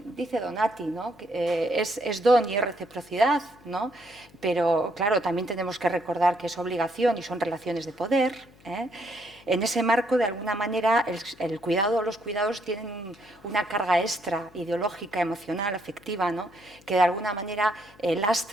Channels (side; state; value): left; noise; hum, 26 dB below the sound